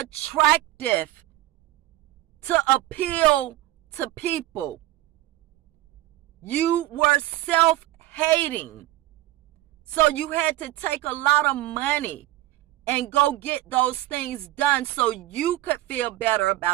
to appeal to people. You were self-hating. So you had to take a lot of money and go get those things done so you could feel better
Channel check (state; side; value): quieter; left; 16.1 dB